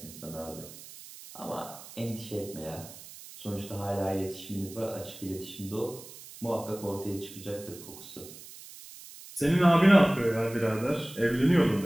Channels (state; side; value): noise; right; hiss, 16 dB below the sound